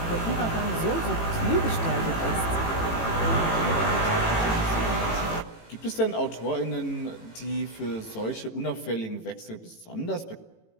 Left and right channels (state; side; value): late; right; 18 ms